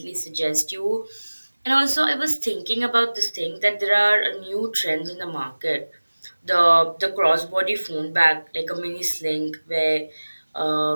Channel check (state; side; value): inverted; both; correlation -1.00